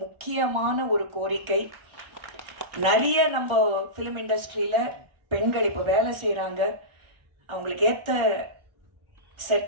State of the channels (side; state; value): left; late; 1.4 ms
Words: முக்கியமான ஒரு கோரிக்கை. நிறைய நம்ம ஃபிலிம் இண்டஸ்ட்ரியில் பெண்கள் இப்போ வேலை செய்கிறாங்க, அவங்களுக்கு ஏற்ற